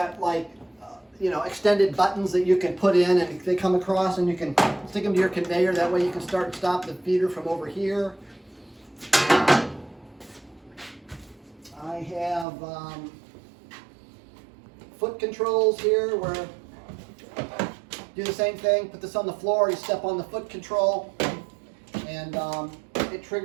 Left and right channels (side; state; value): left; drops out; at 12.5 s